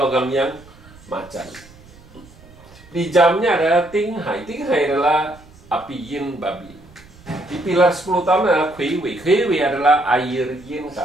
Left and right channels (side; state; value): right; noise; rumble, 23 dB below the sound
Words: logam yang macan. Di jamnya adalah Tinghai. Tinghai adalah api yin babi. Di pilar 10 tahun adalah Kuiwei. Kuiwei adalah air yin